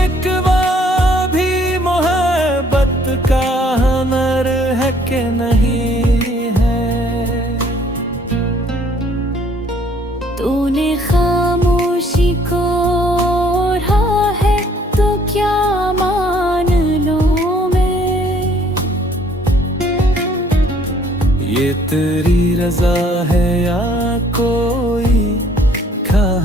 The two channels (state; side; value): normal; both; correlation 0.61